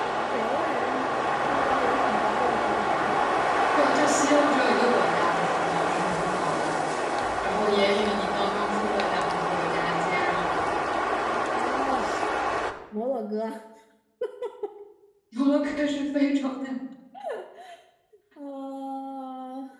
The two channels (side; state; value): both; identical; correlation 1.00